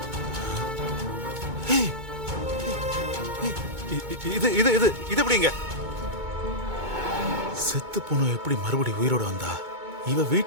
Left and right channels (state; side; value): late; left; 2.2 ms